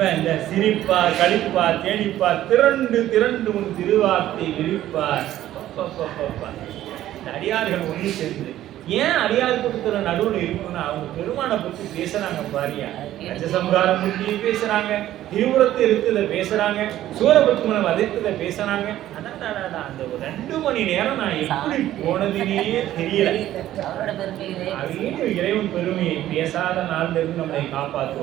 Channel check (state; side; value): quieter; left; 13.3 dB